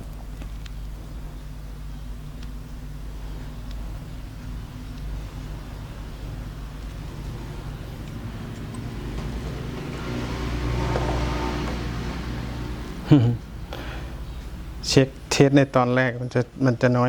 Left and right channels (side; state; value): both; identical; correlation 1.00